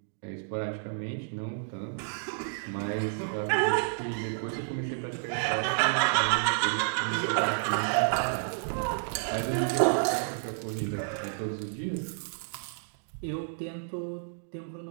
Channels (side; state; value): left; silent; digital silence